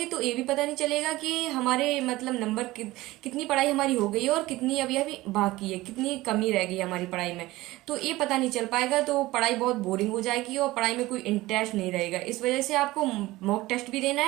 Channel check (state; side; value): quieter; left; 18.6 dB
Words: तो ये भी पता नहीं चलेगा कि हमारे मतलब नंबर कितनी पढ़ाई हमारी हो गई है और कितनी अभी अभी बाकी है, कितनी कमी रह गई है हमारी पढ़ाई में। तो ये पता नहीं चल पाएगा, तो पढ़ाई बहुत बोरिंग हो जाएगी और पढ़ाई में कोई इंटरेस्ट नहीं रहेगा। इस वजह से आपको मॉक टेस्ट भी देना